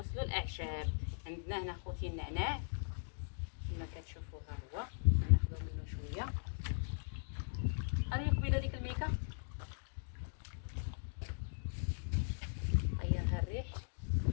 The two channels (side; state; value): right; silent; digital silence